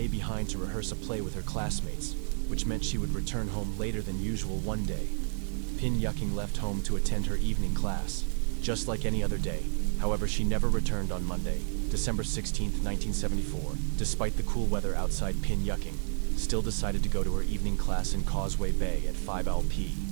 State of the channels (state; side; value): silent; left; digital silence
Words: behind to rehearse a play with her classmates, which meant she would return home later than usual one day. Pin Yucking left home to attend her evening class, just like any other day. However, she never returned on Monday, December 16, 1974. Despite the cool weather outside, Pin Yucking still decided to go to her evening class in Causeway Bay at 5